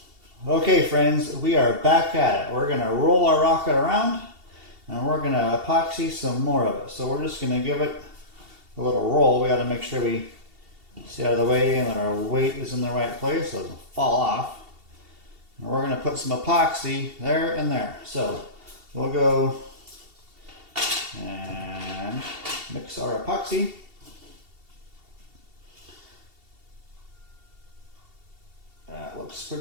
Okay, friends, we are back at it. We're going to roll our rocket around, and we're going to epoxy some more of it. So we're just going to give it a little roll. We got to make sure we stay out of the way and that our weight is in the right place so it doesn't fall off. And we're going to put some epoxy there and there. So we'll go and mix our epoxy. That looks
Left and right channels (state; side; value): late; left; 2.7 ms